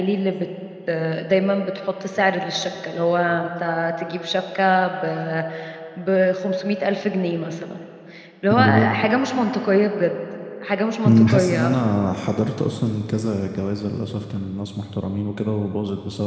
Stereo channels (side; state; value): both; identical; correlation 1.00